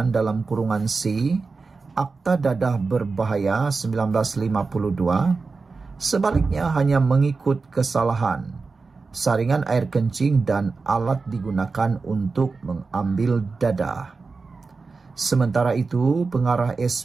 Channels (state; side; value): quieter; left; 4.3 dB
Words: dalam kurungan C Akta Dadah Berbahaya 1952. Sebaliknya hanya mengikut kesalahan, saringan air kencing dan alat digunakan untuk mengambil dadah. Sementara itu, pengarah